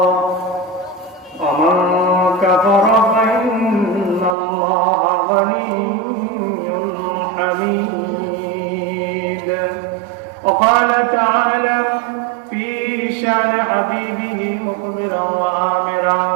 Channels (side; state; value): left; drops out; at 4.4 s